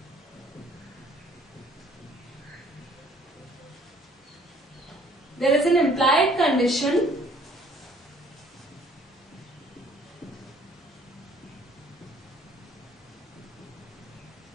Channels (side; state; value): both; normal; correlation 0.58